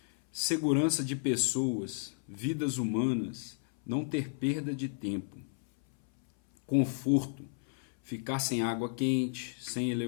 segurança de pessoas, vidas humanas, não ter perda de tempo, conforto, ficar sem água quente, sem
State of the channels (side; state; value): right; silent; 56 dB below the other